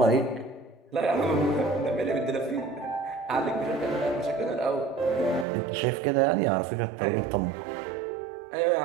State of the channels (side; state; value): left; drops out; at 5.5 s